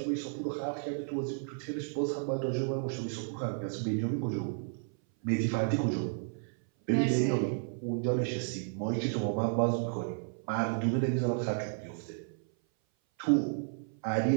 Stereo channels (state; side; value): silent; left; 56 dB below the other